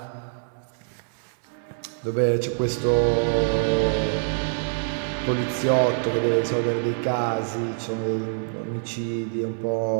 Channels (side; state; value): left; silent; digital silence